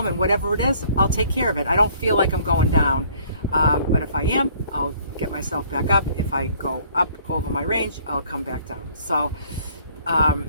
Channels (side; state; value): both; inverted; correlation -0.57